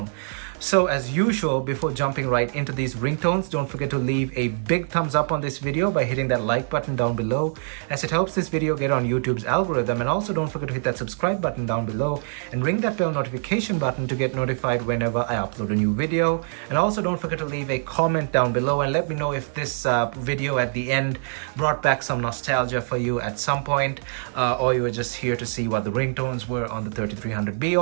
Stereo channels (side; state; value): left; silent; digital silence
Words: So as usual, before jumping right into these ringtones, don't forget to leave a big thumbs up on this video by hitting that like button down below, as it helps this video get on YouTube's algorithm. And also don't forget to hit that subscribe button down below and ring that bell notification button to get notified whenever I upload a new video. And also don't forget to leave a comment down below and let me know if this video at the end brought back some nostalgia for you at some point, or you were just here to see what the ringtones were on the 3300b,